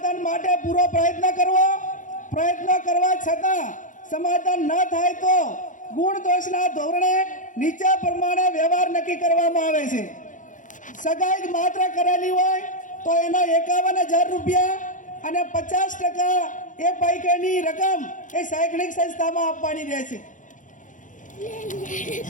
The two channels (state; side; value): late; right; 0.37 ms